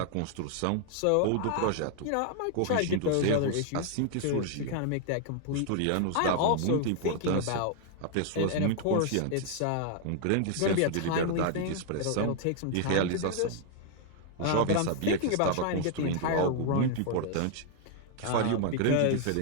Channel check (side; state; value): both; different; correlation 0.00